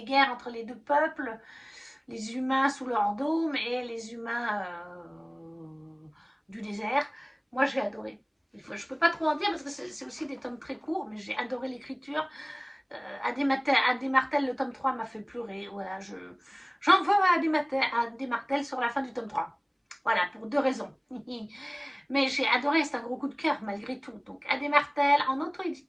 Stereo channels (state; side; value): identical; both; correlation 1.00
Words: entre les deux peuples, les humains sous leur dôme et les humains du désert. Moi, j'ai adoré. Je ne peux pas trop en dire parce que c'est aussi des tomes très courts, mais j'ai adoré l'écriture. Adé Martel, le tome 3 m'a fait pleurer. Voilà, j'en veux à Adé Martel sur la fin du tome 3. Voilà, pour 2 raisons. Mais j'ai adoré, c'est un gros coup de cœur malgré tout. Donc Adé Martel en